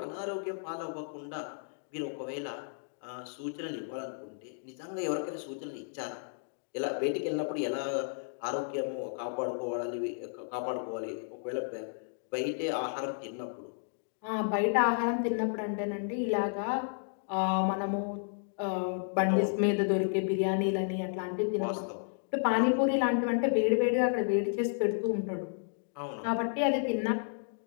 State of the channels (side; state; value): right; silent; digital silence